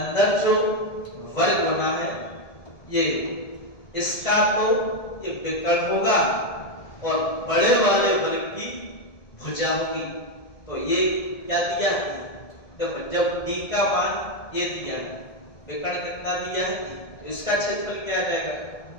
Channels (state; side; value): late; right; 1.7 ms